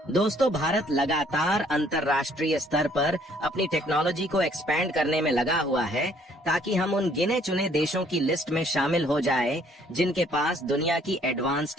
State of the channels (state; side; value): normal; both; correlation 0.62